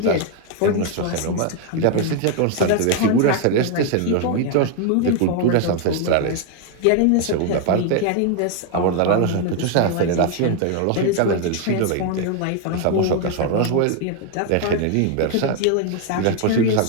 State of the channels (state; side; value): different; both; correlation 0.01